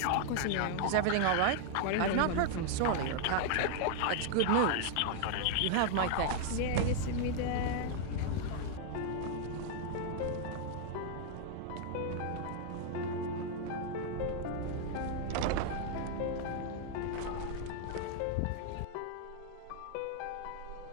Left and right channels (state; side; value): different; both; correlation 0.00